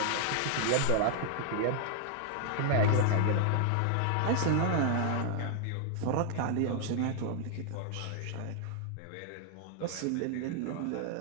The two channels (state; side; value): different; both; correlation 0.00